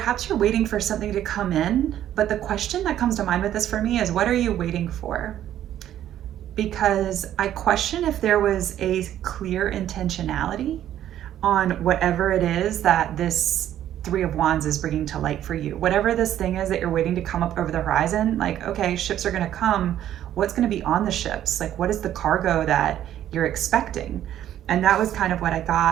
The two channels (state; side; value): quieter; left; 11.5 dB